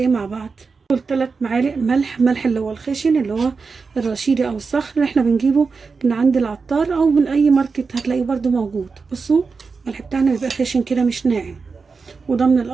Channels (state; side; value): quieter; left; 4.7 dB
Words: مع بعض؟ 3 معالق ملح اللي هو الخشن، اللي هو الرشيدي أو الصخر اللي احنا بنجيبه من عند العطار أو من أي ماركت هتلاقيه برده موجود. بصوا الملح بتاعنا بيبقى خشن كده مش ناعم، وده من